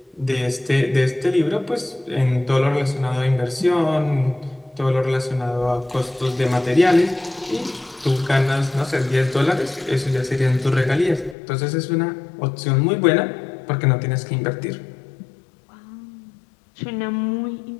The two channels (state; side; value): drops out; right; at 11.4 s